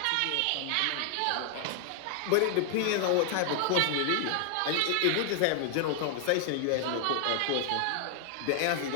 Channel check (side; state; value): both; different; correlation 0.00